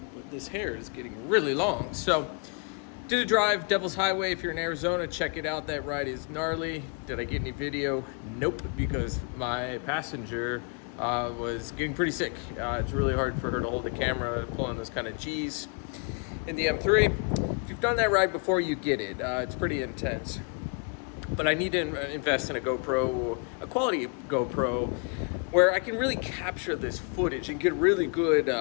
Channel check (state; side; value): quieter; right; 38.0 dB